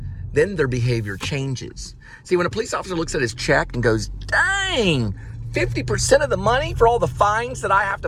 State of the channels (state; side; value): identical; both; correlation 1.00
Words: then their behavior changes. See, when a police officer looks at his check and goes, dang, 50% of the money for all the fines that I have